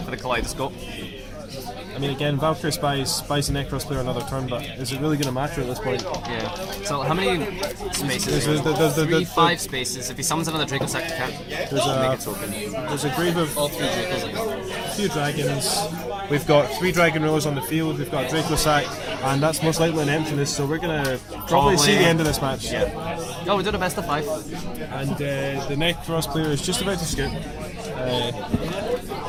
for the Kaleidoscope. I mean, again, Valkyrie buys the Nekroz player another turn, but is it really going to matter at this point? Yeah. So how many spaces? There's 3, 5 spaces. If he summons another Draco Sack, he can't make a token. There's a grave of All 3 Dracos. a few dragons. We've got 3 Dragon Rulers on the field. We've got Draco Sack, and that's most likely an emptiness. So we're going to probably see the end of this match. Yeah. Oh, we did a best of 5. And the Nekroz player is just about to scoop.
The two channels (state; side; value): identical; both; correlation 1.00